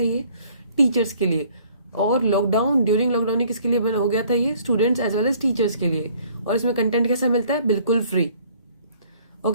ये टीचर्स के लिए। और ड्यूरिंग लॉकडाउन ये किसके लिए हो गया था, ये students as well as teachers के लिए। और इसमें कंटेंट कैसा मिलता है, बिल्कुल फ्री।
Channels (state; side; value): inverted; both; correlation -0.59